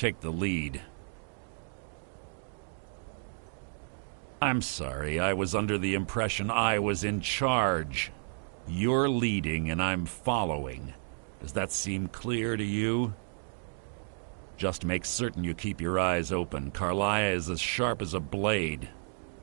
the lead. I'm sorry, I was under the impression I was in charge. You're leading and I'm following. Does that seem clear to you? Just make certain you keep your eyes open. Karliah is as sharp as a blade.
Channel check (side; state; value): left; silent; digital silence